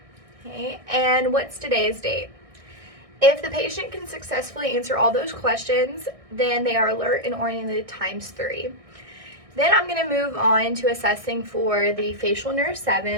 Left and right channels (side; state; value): left; late; 1.6 ms